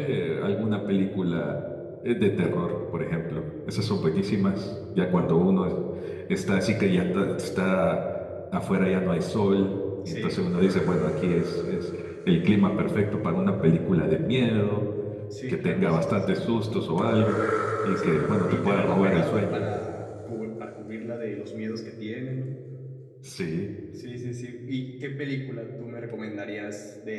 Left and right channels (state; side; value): identical; both; correlation 1.00